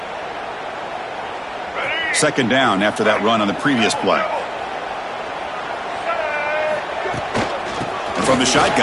Second down after that run on the previous play. And from the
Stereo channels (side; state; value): both; identical; correlation 1.00